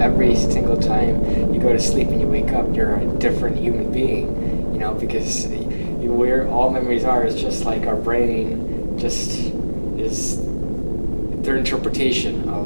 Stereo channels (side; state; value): both; inverted; correlation -1.00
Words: Every single time you go to sleep and you wake up, you're a different human being, because where all memories are is just like our brain just is their interpretation